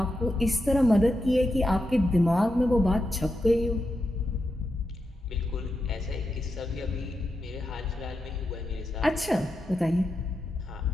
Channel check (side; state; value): both; normal; correlation 0.87